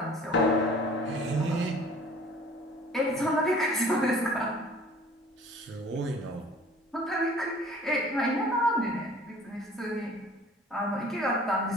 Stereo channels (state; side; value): normal; both; correlation 0.49